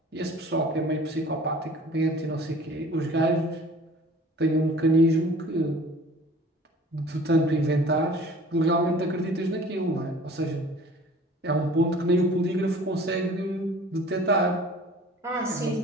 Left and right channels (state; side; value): normal; both; correlation 0.47